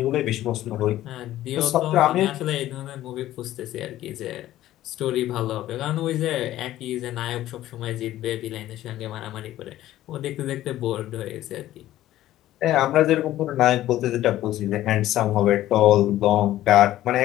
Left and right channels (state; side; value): quieter; right; 14.1 dB